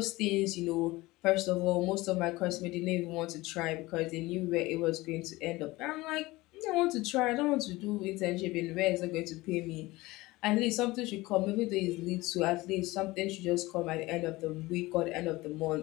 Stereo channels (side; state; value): right; quieter; 20.2 dB